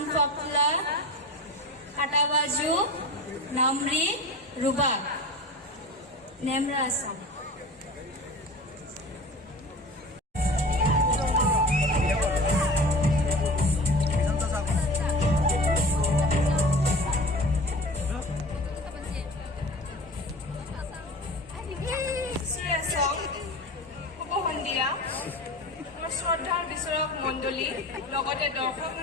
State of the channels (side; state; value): both; normal; correlation 0.36